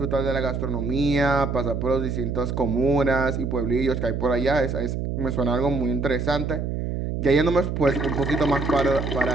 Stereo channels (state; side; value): noise; right; hum, 3 dB below the sound